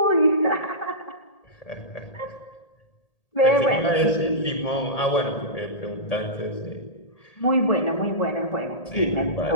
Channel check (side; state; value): right; late; 1.8 ms